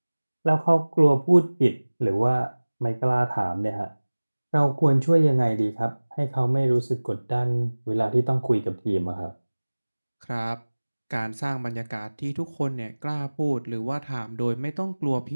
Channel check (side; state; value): both; inverted; correlation -1.00